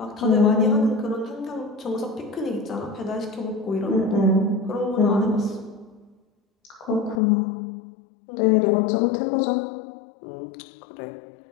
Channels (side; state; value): right; drops out; at 7.2 s